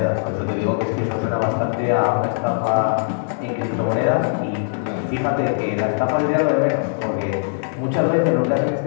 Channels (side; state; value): right; silent; digital silence